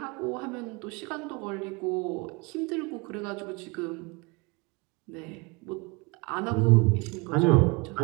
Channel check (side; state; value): left; quieter; 27.6 dB